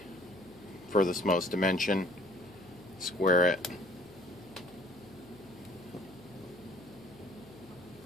furthest most dimension, square it,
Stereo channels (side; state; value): left; noise; hum, 22 dB below the sound